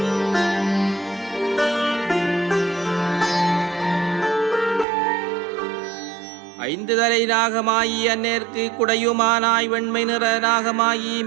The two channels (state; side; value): drops out; left; at 4.9 s